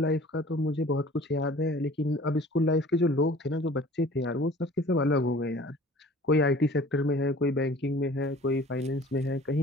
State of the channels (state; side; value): normal; both; correlation 0.47